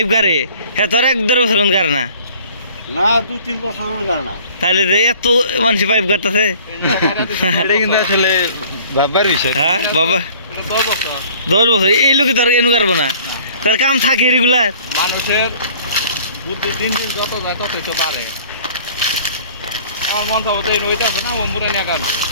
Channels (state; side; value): inverted; both; correlation -0.51